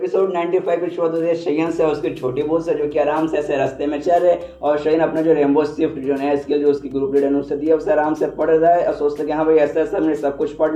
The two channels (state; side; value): identical; both; correlation 1.00